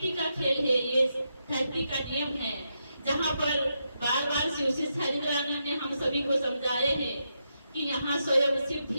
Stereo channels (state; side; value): inverted; both; correlation -0.83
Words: का खेल है, ये धरती का नियम है, जहाँ पर बार बार शिव से हरिद्रानंद ने हम सभी को समझाए हैं कि यहाँ स्वयं शिव